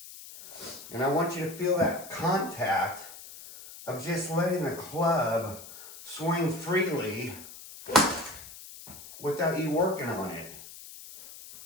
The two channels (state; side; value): noise; left; hiss, 15 dB below the sound